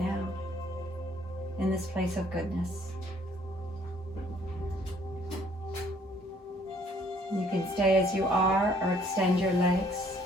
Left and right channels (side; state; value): both; normal; correlation 0.62